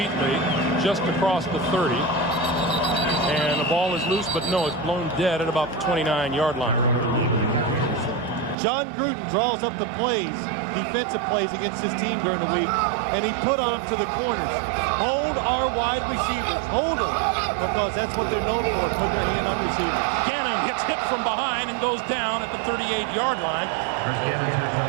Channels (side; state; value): left; drops out; at 8.6 s